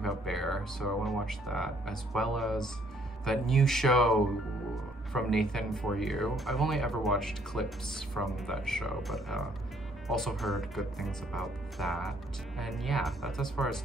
Bear, so I want to watch that, as well as that new show from Nathan For You. I've only ever watched clips from that show, but also heard good things about that. And yeah, that's as far as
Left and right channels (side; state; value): both; normal; correlation 0.65